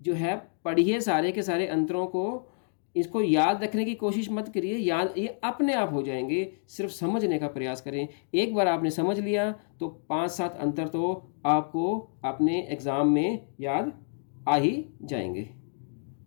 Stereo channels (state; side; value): silent; right; digital silence